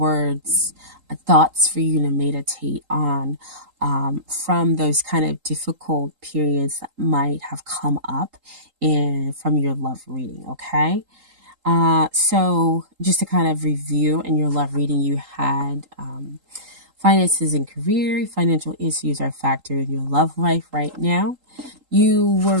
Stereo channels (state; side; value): late; left; 3.8 ms